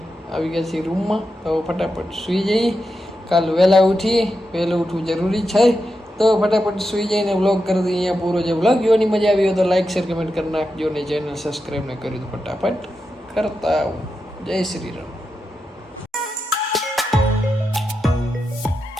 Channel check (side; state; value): both; normal; correlation 0.88